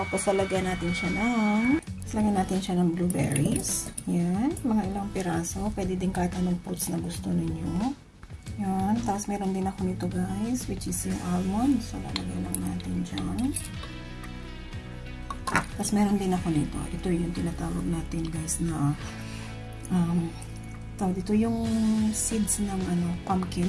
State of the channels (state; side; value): identical; both; correlation 1.00